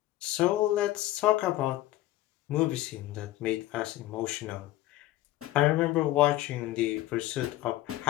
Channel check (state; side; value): quieter; right; 15.6 dB